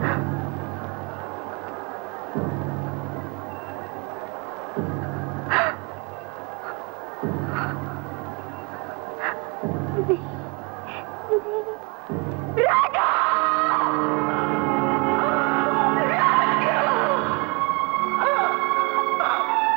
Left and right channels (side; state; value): left; quieter; 30.6 dB